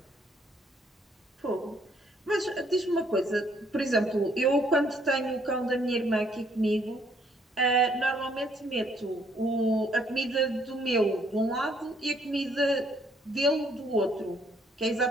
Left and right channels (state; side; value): normal; both; correlation 0.67